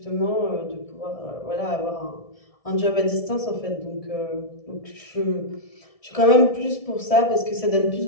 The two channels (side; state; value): right; late; 1.7 ms